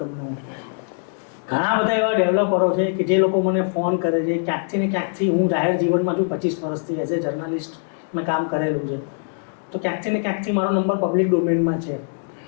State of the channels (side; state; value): right; silent; 64 dB below the other